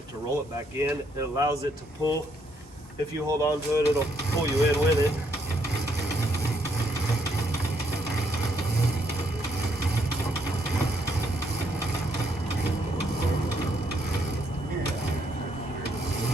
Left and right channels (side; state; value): both; normal; correlation 0.73